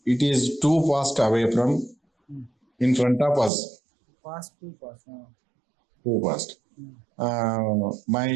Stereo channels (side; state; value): left; drops out; at 3.5 s